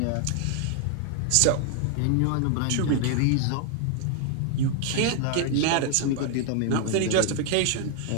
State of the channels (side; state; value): both; different; correlation 0.00